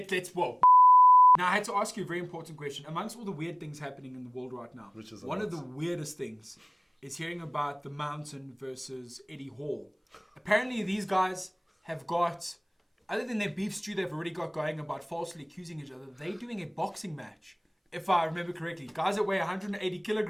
Now, I had to ask you a very important question. Amongst all the weird things happening in the world right now, one of the weirdest things is hearing about the Mountain versus Eddie Hall. Apparently, these guys have got, other than their beef stew they've already got going about falsely accusing each other, they're doing a boxing match. If I remember correctly, guys that weigh 180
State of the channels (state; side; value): identical; both; correlation 1.00